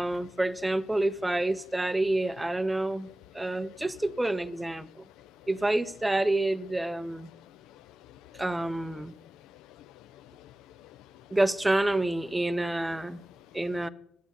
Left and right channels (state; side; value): normal; both; correlation 0.97